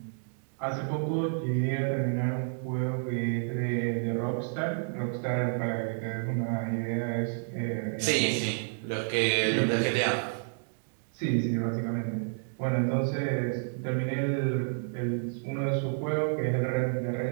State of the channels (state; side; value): silent; left; digital silence